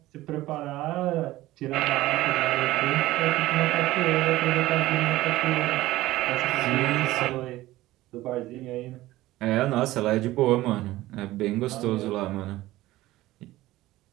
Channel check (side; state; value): left; quieter; 16.9 dB